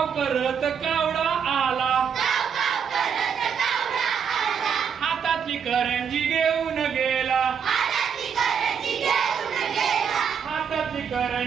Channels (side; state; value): left; quieter; 7.2 dB